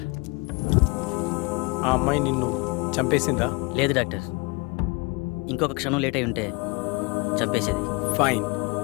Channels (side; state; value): right; quieter; 27.2 dB